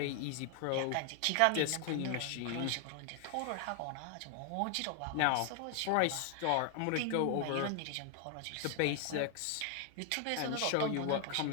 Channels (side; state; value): both; different; correlation 0.00